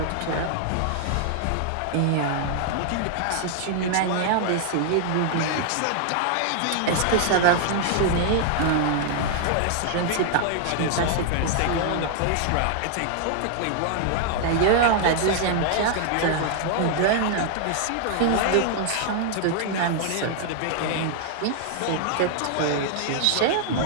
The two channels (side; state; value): both; different; correlation 0.00